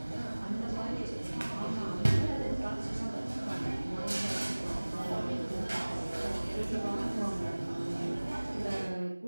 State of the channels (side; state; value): both; inverted; correlation -1.00